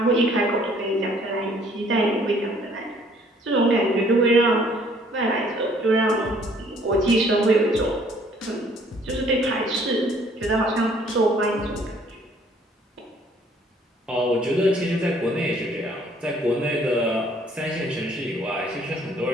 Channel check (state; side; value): normal; both; correlation 0.60